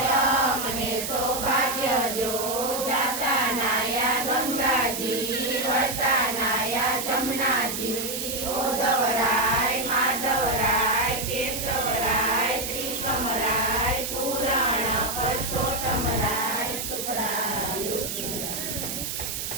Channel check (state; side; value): noise; right; hiss, 4 dB below the sound